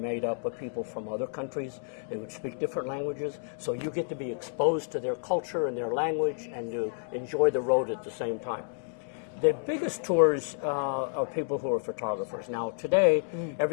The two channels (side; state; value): right; silent; digital silence